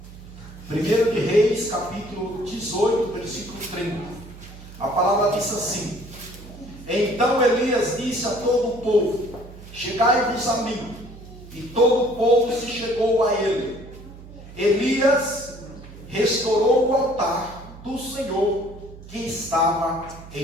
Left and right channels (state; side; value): noise; right; hum, 17 dB below the sound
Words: 1 de Reis, capítulo 18, versículo 30. A palavra diz assim: então Elias disse a todo o povo: chegai-vos a mim. E todo o povo se chegou a ele. Elias restaurou o altar do Senhor que estava